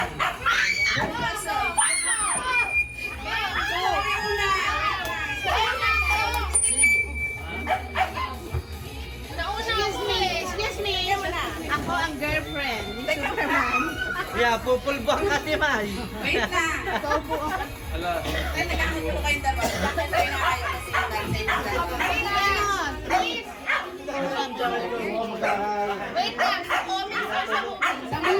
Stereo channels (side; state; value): both; identical; correlation 1.00